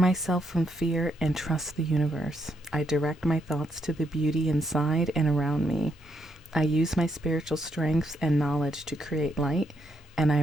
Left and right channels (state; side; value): normal; both; correlation 0.77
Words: from fear and trust the universe. I direct my thoughts to the beauty inside and around me. I use my spiritual strengths and knowledge to create light, and I